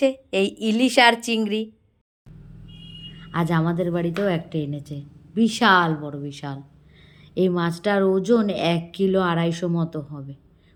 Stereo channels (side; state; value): both; identical; correlation 1.00